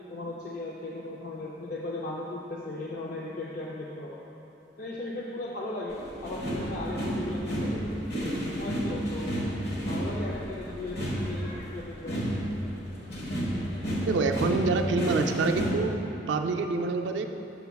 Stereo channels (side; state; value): both; normal; correlation 0.52